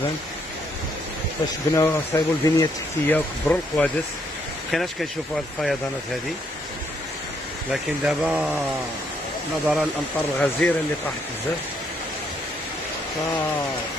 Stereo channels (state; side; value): normal; both; correlation 0.72